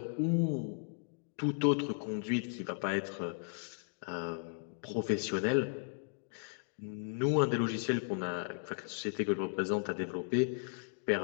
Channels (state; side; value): silent; right; digital silence